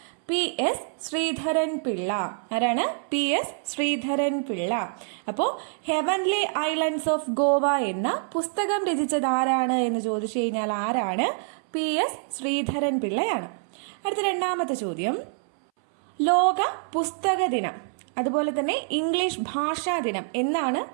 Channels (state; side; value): silent; left; 61 dB below the other